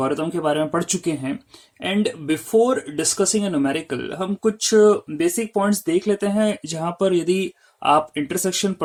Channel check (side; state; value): both; identical; correlation 1.00